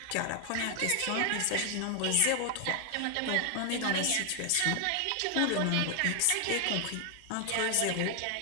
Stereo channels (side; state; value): both; different; correlation 0.00